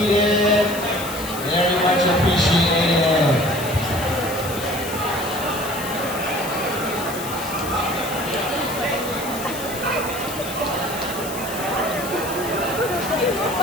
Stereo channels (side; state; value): left; noise; hiss, 10 dB below the sound